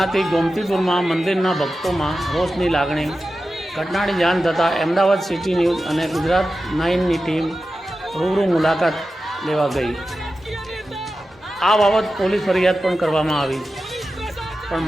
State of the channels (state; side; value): normal; both; correlation 0.92